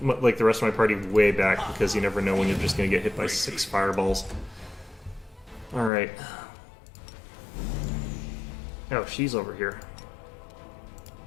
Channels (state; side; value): drops out; right; at 5.9 s